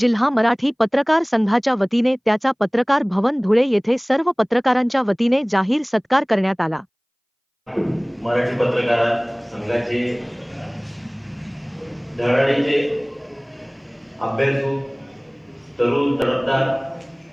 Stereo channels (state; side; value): identical; both; correlation 1.00